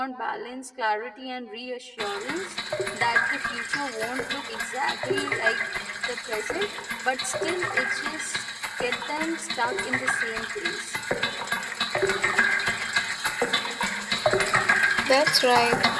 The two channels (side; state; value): both; identical; correlation 1.00